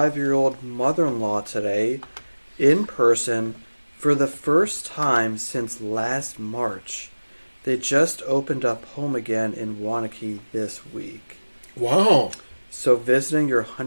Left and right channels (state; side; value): inverted; both; correlation -1.00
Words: mother-in-law today in person for the first time since last March. They just opened up home again in Wanakee this week. Wow. So visiting your